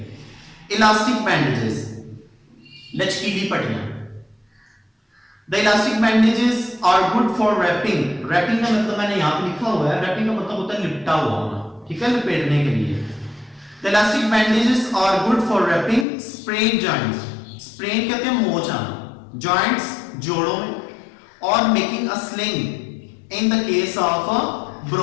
इलास्टिक बैंडेजेस, लचकीली पट्टियां। The elastic bandages are good for wrapping. Wrapping का मतलब मैंने यहाँ पे लिखा हुआ है, wrapping का मतलब होता है लिपटा हुआ होना, ठीक है, लपेटने के लिए। The elastic bandages are good for wrapping sprain joints. Sprain कहते हैं मोच आना, joints जोड़ों में, और making a sling in the case of a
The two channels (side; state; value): right; drops out; at 16.1 s